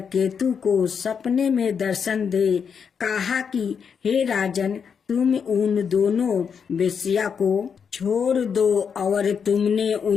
को सपने में दर्शन दे कहा कि हे राजन, तुम उन दोनों वेश्या को छोड़ दो और तुमने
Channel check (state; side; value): quieter; right; 6.7 dB